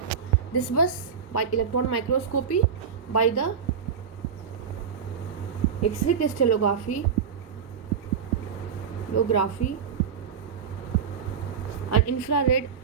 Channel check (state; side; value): quieter; left; 7.0 dB